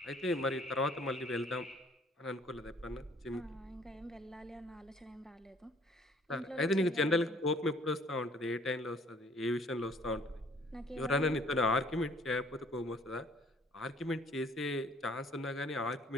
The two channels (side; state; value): both; normal; correlation 0.57